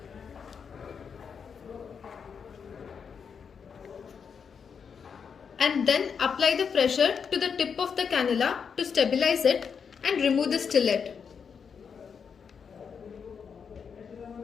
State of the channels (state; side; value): quieter; right; 6.5 dB